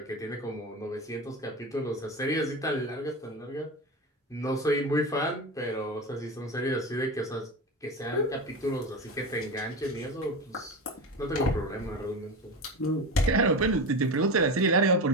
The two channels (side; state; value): both; normal; correlation 0.24